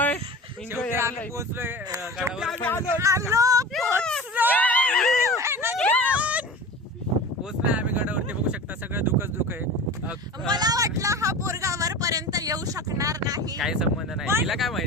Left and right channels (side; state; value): both; normal; correlation 0.34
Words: आम्ही पोहोचलोय गडावर. पोहोचलोय आम्ही गडावरती. बघू शकता सगळं दुःखच दुःख आहे. मला वाटलं हा पोरगा वरपर्यंत येऊ शकणार नाही. काही संबंध नाही. तिला काय